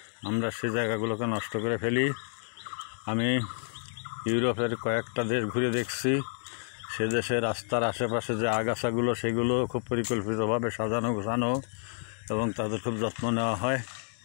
আমরা সে জায়গাগুলোকে নষ্ট করে ফেলি। আমি ইউরোপের কয়েকটা দেশ ঘুরে দেখছি, সে দেশের রাস্তার আশেপাশে যে আগাছাগুলো, সেগুলো খুব পরিকল্পিতভাবে সাজানো গোছানো এবং তাদের খুব যত্ন নেওয়া হয়।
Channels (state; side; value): silent; right; 58 dB below the other